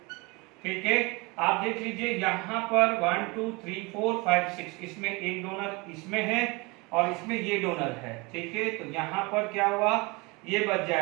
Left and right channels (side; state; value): left; quieter; 26.4 dB